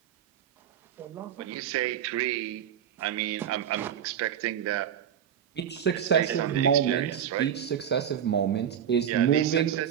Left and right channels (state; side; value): quieter; left; 9.2 dB